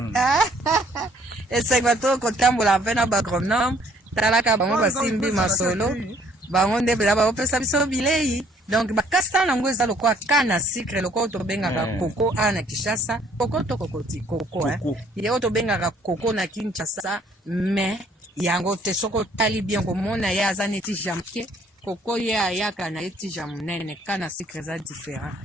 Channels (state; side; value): normal; both; correlation 0.61